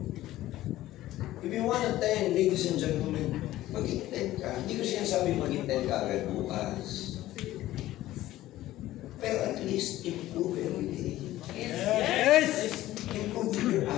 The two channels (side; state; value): right; quieter; 15.2 dB